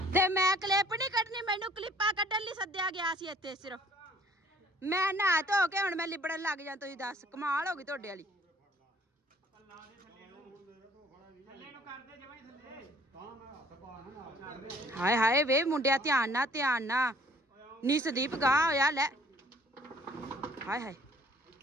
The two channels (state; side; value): normal; both; correlation 0.57